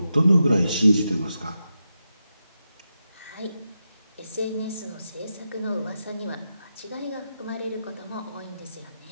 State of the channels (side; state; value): both; inverted; correlation -0.87